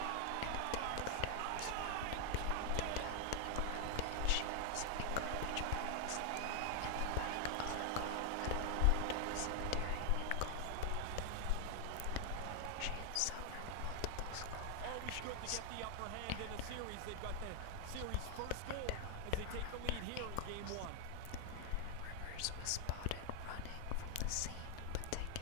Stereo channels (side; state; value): both; different; correlation 0.00